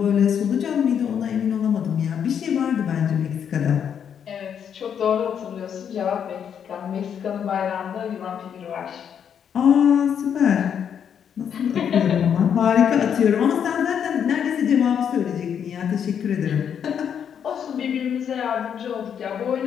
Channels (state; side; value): quieter; right; 8.2 dB